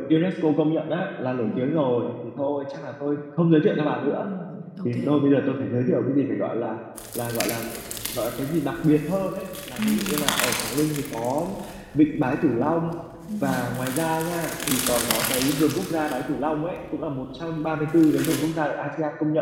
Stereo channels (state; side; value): identical; both; correlation 1.00